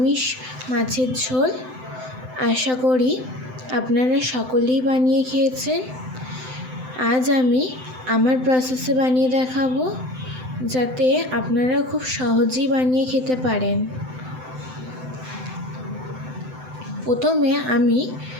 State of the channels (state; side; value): late; left; 7.8 ms